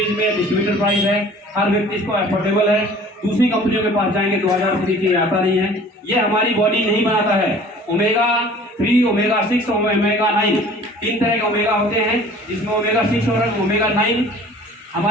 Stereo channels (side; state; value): both; normal; correlation 0.48